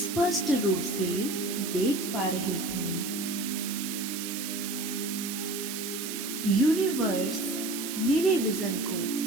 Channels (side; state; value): right; noise; hiss, 6 dB below the sound